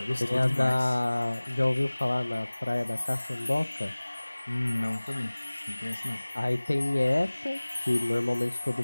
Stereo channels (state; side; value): inverted; both; correlation -1.00